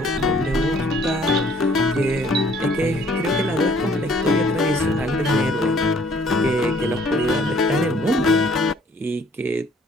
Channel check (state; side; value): normal; both; correlation 0.59